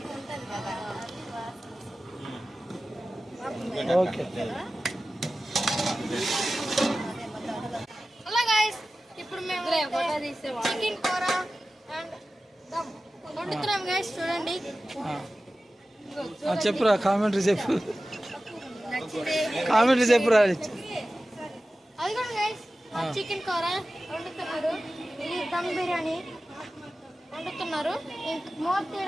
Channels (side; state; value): both; normal; correlation 0.95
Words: ఉంటుంది కదా. ఓకే. హలో గైస్, ఇప్పుడు మేము చికెన్ కూర అండ్ దమ్ వండుతున్నాం గైస్. చూడండి, చెప్పురా, కామెంటరీ చెప్పు, కామెంటరీ చెప్పురా. అది కూడా గైస్ చికెన్ కూర వండుతున్నారు. ఇది దమ్ బిర్యానీ వండుతున్నారు. ఇంక మూత